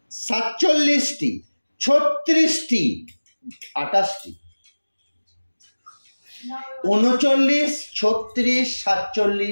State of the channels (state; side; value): inverted; both; correlation -1.00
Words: 47টি, 36টি, 28টি। 39, 36,